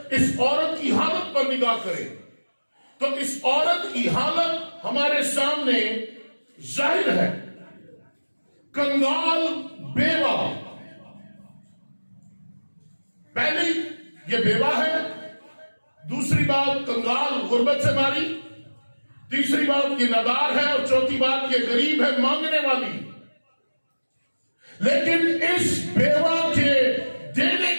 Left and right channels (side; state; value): both; inverted; correlation -1.00